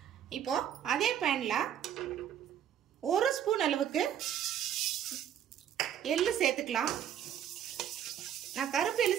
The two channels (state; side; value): quieter; left; 9.7 dB